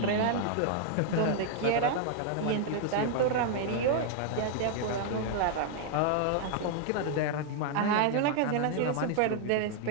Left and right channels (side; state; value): both; different; correlation 0.00